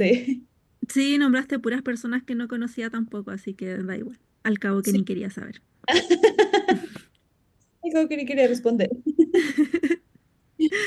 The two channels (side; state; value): both; identical; correlation 1.00